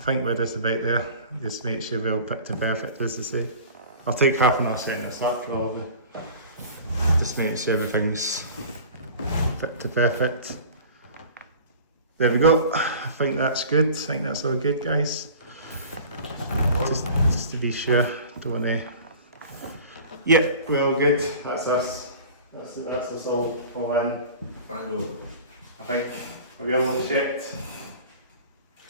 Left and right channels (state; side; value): inverted; both; correlation -0.42